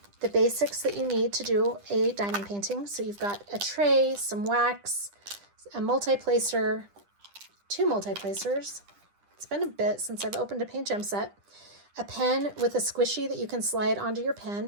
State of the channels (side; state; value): left; late; 10 ms